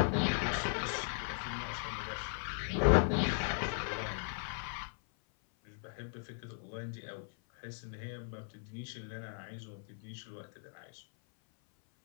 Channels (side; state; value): right; silent; 53 dB below the other